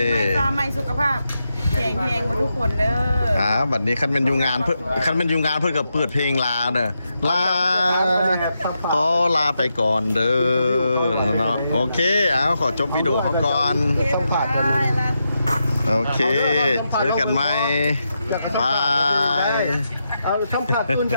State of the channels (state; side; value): inverted; both; correlation -0.85